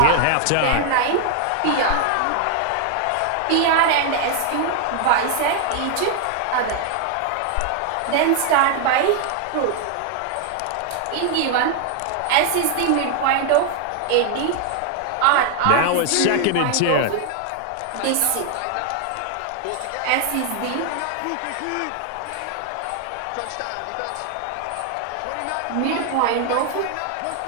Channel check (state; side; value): different; both; correlation 0.00